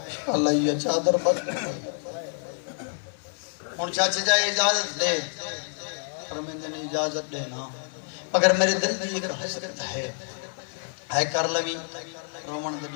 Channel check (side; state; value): right; silent; 60 dB below the other